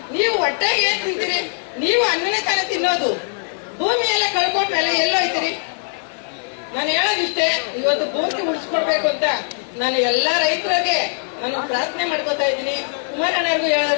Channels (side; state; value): right; silent; 65 dB below the other